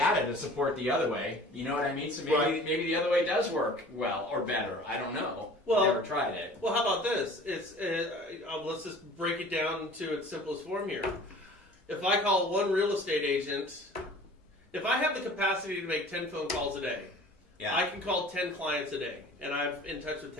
to support the other way. You know what I mean? So maybe the other way does work well or better. I don't know. Well, never tried it. Well, how about this? Let's just break it down to its simplest form here. If I call one real estate agent, if I have the capacity to make 10 phone calls a day, I can call 10 clients a day, and I'm in touch with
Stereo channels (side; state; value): both; normal; correlation 0.45